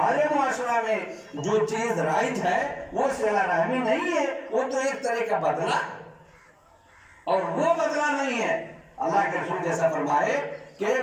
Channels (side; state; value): both; identical; correlation 1.00